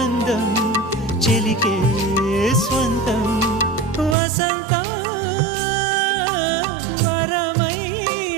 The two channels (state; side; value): drops out; left; at 4.2 s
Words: చెలికే స్వంతం వసంతం వరమై